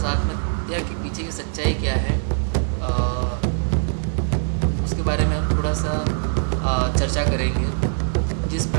आत्महत्या के पीछे की सच्चाई क्या है, उसके बारे में हम थोड़ा सा चर्चा करेंगे। जिस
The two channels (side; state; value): left; silent; 55 dB below the other